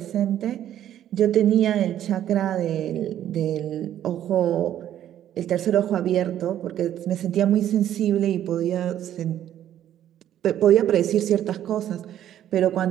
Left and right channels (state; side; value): quieter; left; 11.3 dB